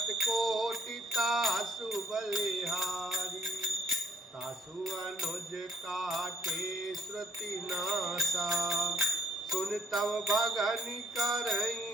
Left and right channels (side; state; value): both; normal; correlation 0.63